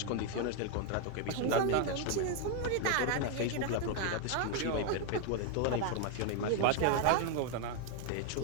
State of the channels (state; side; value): different; both; correlation 0.00